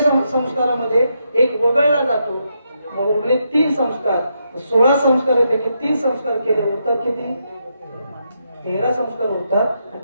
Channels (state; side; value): inverted; both; correlation -0.81